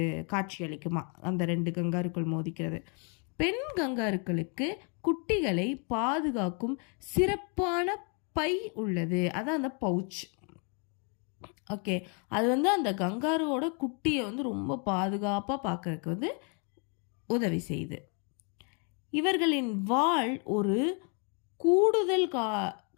காட்சி அளிக்குமா, அந்த 2 கங்காருக்கள் மோதிக்கிறது. பெண் கங்காருக்களுக்கு குட்டிகளை பாதுகாக்கும் சிறப்பான பை உள்ளது, அதான் அந்த பவுச். ஓகே, அது அந்த கங்காருவோட குட்டியை ரொம்ப பாதுகாப்பாக பார்க்கறதுக்கு உதவி செய்யுது. இவர்களின் வால் ஒரு கூடுதல்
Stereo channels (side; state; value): right; quieter; 37.8 dB